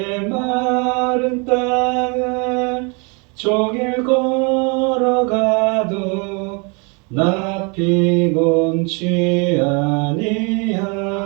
땅을 종일 걸어가도 나 피곤치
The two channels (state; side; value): quieter; left; 32.4 dB